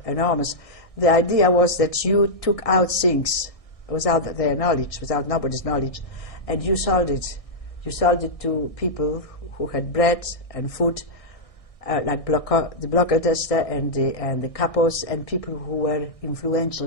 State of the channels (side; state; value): right; late; 1.6 ms